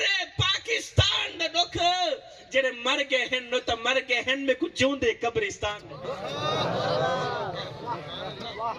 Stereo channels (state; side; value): identical; both; correlation 1.00